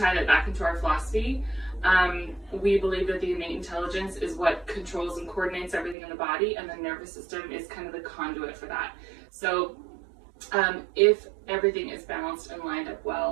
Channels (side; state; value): left; drops out; at 6.0 s